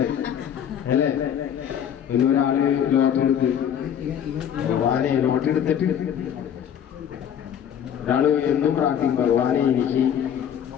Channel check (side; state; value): right; quieter; 9.1 dB